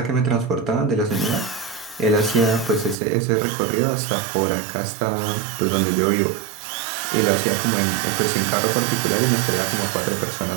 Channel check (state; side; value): drops out; left; at 3.0 s